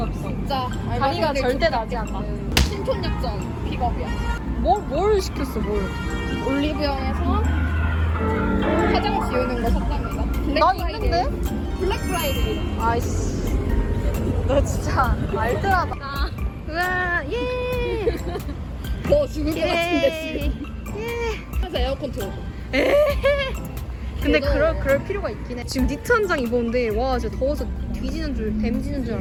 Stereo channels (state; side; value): identical; both; correlation 1.00